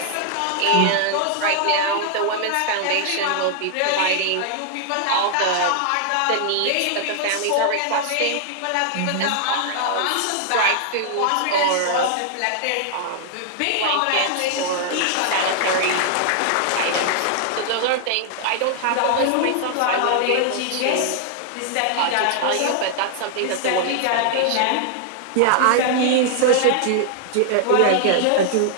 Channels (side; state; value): both; different; correlation 0.00